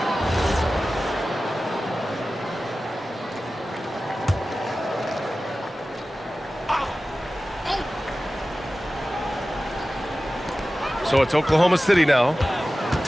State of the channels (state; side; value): normal; both; correlation 0.95